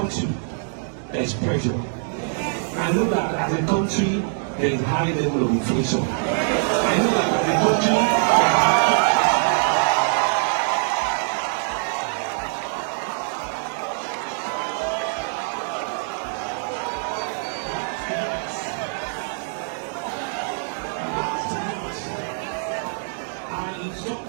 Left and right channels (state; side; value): silent; left; digital silence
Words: there is pressure. I know that as a country there is high level of inflation. I know that as a country I